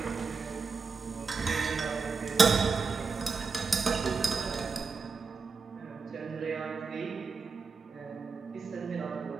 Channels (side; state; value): left; quieter; 4.8 dB